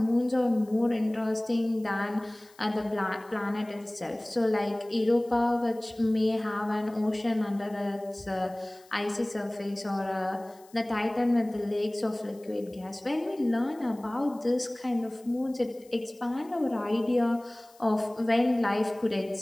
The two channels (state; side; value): noise; left; hiss, 27 dB below the sound